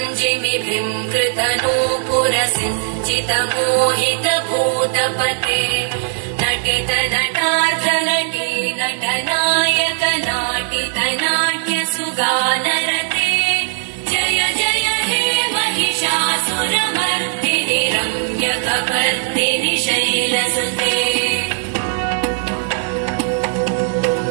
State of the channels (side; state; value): left; silent; digital silence